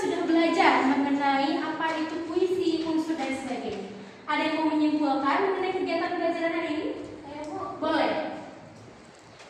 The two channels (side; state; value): both; identical; correlation 1.00